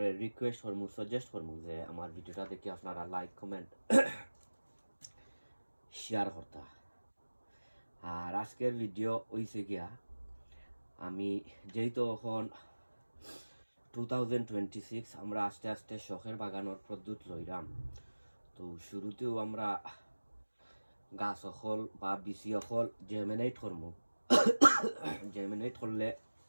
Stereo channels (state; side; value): inverted; both; correlation -1.00